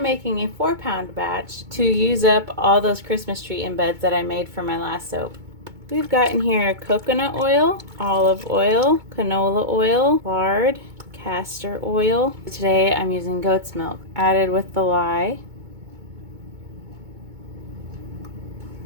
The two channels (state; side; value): late; left; 2.2 ms